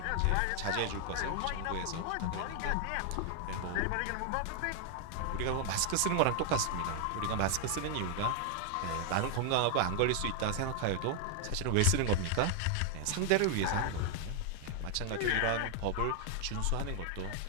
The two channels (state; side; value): different; both; correlation 0.00